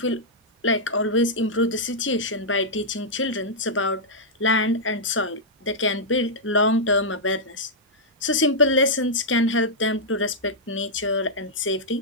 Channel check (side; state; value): both; normal; correlation -0.08